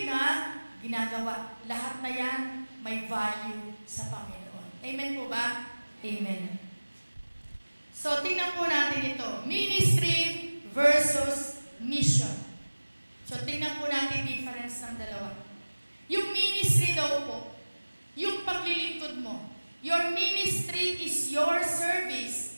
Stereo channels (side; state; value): both; inverted; correlation -1.00